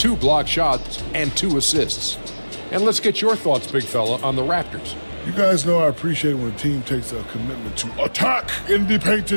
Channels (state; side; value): inverted; both; correlation -1.00